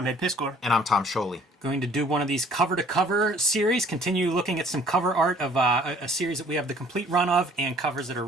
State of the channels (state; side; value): normal; both; correlation 0.56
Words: Ed Piscor. And I'm Tom Scholey. Going to do one of these cover-to-cover series, continue looking at some cover art of a series that we have the complete run of, and covers that are